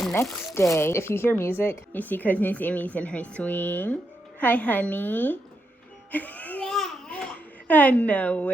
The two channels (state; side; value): normal; both; correlation 0.82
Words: next day. If you hear music, you see cousin Sammy's in her swing. Hi honey. I know